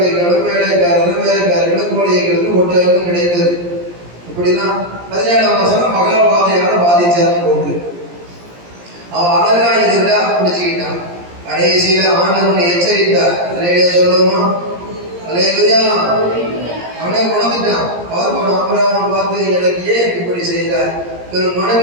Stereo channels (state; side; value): late; left; 17 ms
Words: வேலைக்காரர்களும் கோழிகளும் ஒட்டகளும் கிடைத்தது. இப்படிலாம் 17ஆம் வசனம் மகாபாதையால பாதிச்சாருன்னு போட்டு அவன் அழகா இருந்தா பிடிச்சுக்கிட்டான். கடைசியில ஆண்டவனை எச்சரித்தார். அலையிலே சொல்லுவோமா, அலையிலுயா, அவனே உணர்ந்துட்டான். ஆபிரகாம் பார்த்து, எனக்கு ஏன் இப்படி செய்தார், ஒரு